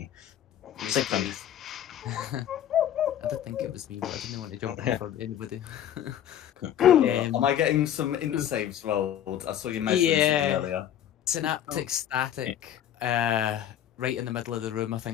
Sig Fund. I did think it was me, but I didn't want to jump in for anybody. Am I getting some int saves rolled? I saw you mention something earlier. Synaptic static. Right in the middle of the room. I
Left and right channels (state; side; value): quieter; right; 10.6 dB